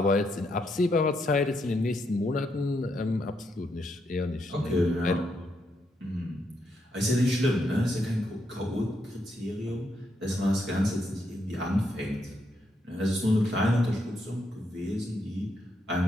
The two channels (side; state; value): both; normal; correlation 0.79